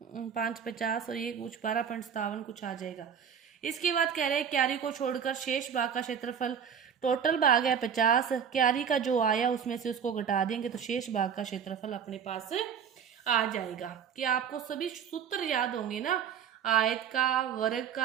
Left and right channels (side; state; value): left; quieter; 7.6 dB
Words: 5 50 और ये कुछ 12.57 कुछ आ जाएगा। इसके बाद कह रहे हैं क्यारी को छोड़कर शेष भाग का क्षेत्रफल, टोटल भाग है 50, क्यारी का जो आया उसमें से उसको घटा देंगे तो शेष भाग का क्षेत्रफल अपने पास आ जाएगा। कि आपको सभी सूत्र याद होंगे ना? आयत का, वर्ग